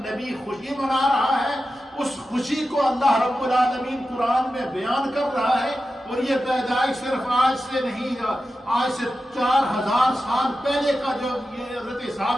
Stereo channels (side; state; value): both; normal; correlation 0.92